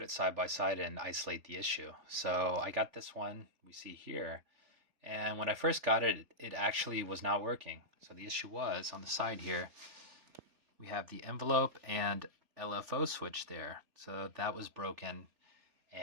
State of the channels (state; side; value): late; left; 3.5 ms